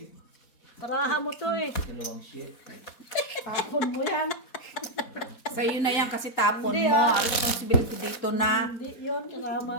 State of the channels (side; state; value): right; late; 4.2 ms